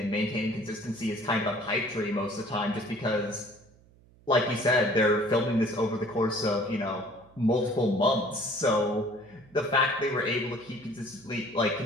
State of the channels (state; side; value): noise; right; hum, 28 dB below the sound